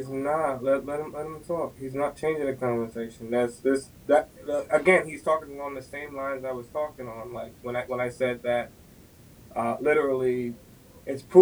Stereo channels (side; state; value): both; identical; correlation 1.00